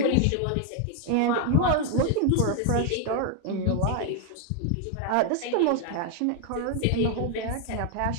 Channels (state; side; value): different; both; correlation 0.01